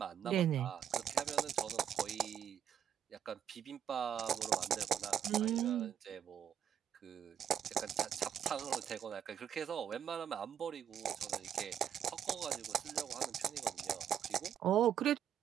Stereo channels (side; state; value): left; quieter; 9.4 dB